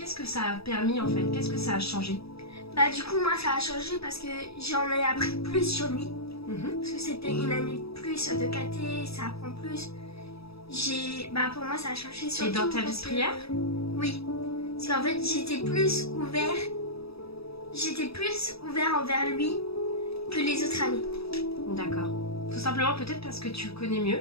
que ça a permis en fait? Qu'est-ce que ça a changé? Du coup moi ça a changé parce que j'en ai appris plus sur lui. Parce que c'était une année de plus de caté, ça apprend plus. Pour moi ça a changé surtout. Et dans ta vie de prière? Oui. Parce qu'en fait j'étais plus ouvert envers lui que les autres années. D'accord. Tout simplement peut-être parce que tu le connais mieux.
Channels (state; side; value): late; right; 0.77 ms